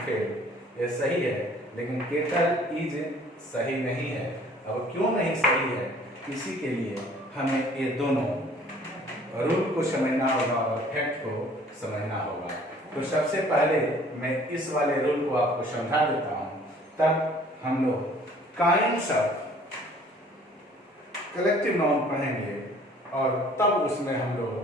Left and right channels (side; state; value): both; normal; correlation 0.54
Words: field, ये सही है, लेकिन केटल इज सही नहीं है। अब क्यों नहीं सही है, इसी के लिए हमें ये दोनों रूल को समझना होगा और फैक्ट को समझना होगा। तो सबसे पहले मैं इस वाले रूल को आपको समझा देता हूं, तब हम लोग काइंड्स ऑफ कलेक्टिव नाउन पढ़ेंगे और तब उसमें हम